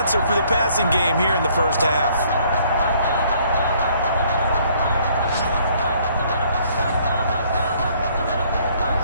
for the passing game here in the first half.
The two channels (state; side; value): inverted; both; correlation -0.63